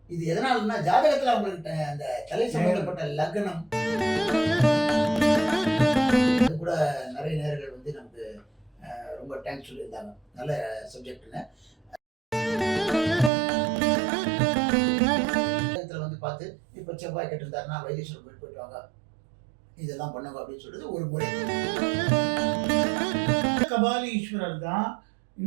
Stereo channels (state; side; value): drops out; left; at 13.3 s